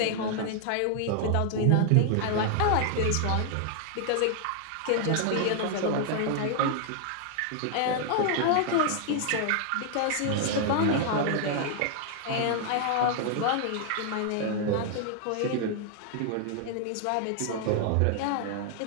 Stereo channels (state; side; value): different; both; correlation 0.00